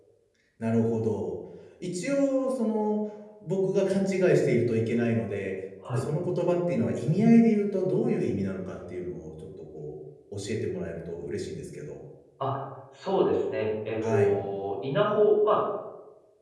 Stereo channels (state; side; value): identical; both; correlation 1.00